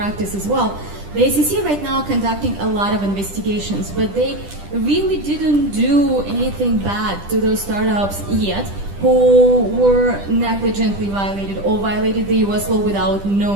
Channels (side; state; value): left; late; 10 ms